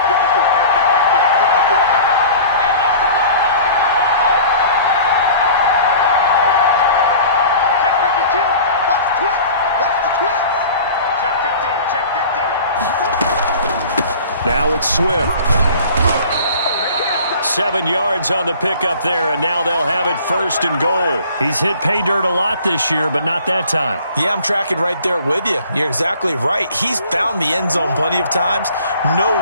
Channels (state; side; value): inverted; both; correlation -0.45